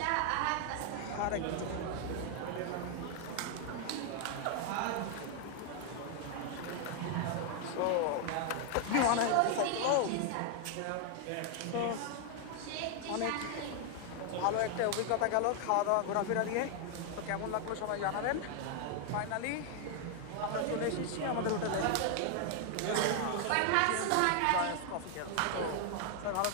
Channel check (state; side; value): different; both; correlation 0.00